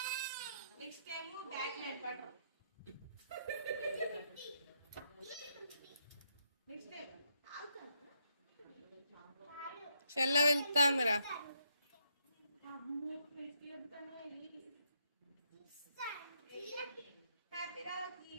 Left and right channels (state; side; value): inverted; both; correlation -0.76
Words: Next time back night butter. చెల్ల వెళ్తాందిరా.